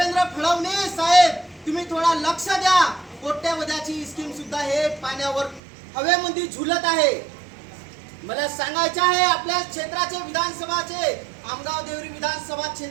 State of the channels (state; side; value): drops out; left; at 5.6 s